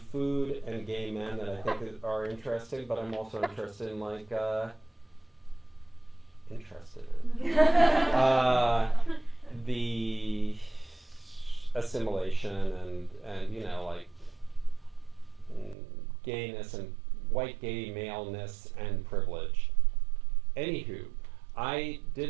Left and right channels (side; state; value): left; drops out; at 15.8 s